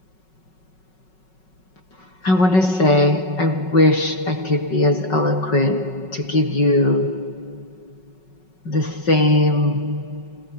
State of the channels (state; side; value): late; right; 5.4 ms